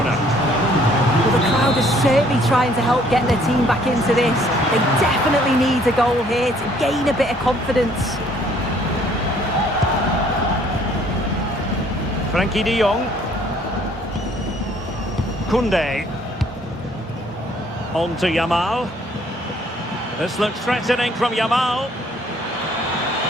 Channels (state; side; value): normal; both; correlation 0.61